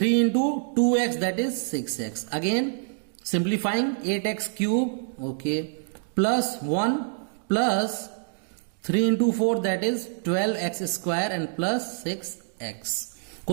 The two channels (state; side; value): silent; left; digital silence